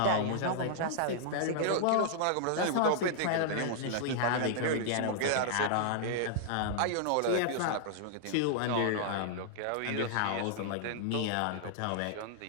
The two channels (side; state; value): both; different; correlation -0.01